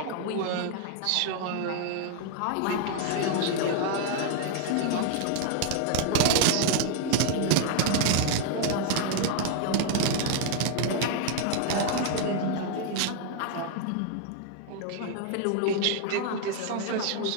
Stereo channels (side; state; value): both; different; correlation 0.00